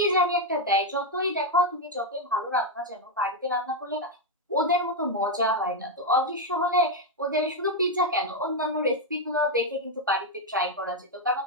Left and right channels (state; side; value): normal; both; correlation 0.03